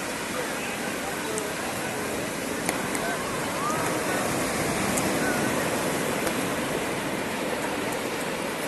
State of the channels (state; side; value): identical; both; correlation 1.00